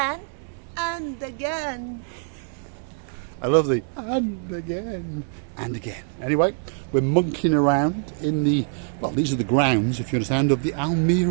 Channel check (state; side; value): silent; left; 62 dB below the other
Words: and again. I love the and again and again. Anyway, we're monkeying around in the, well, these are the grounds, if you understand, of the